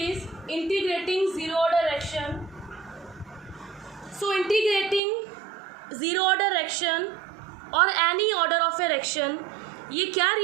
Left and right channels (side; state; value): left; drops out; at 5.0 s